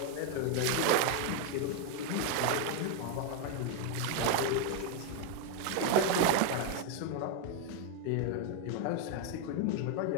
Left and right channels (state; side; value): different; both; correlation 0.01